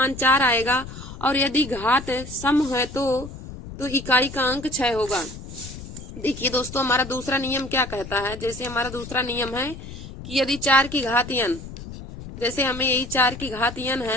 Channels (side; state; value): left; noise; rumble, 12 dB below the sound